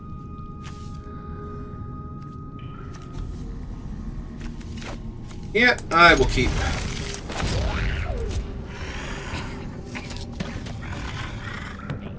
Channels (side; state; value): both; identical; correlation 1.00